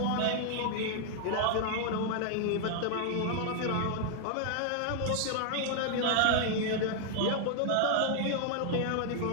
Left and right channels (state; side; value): different; both; correlation 0.00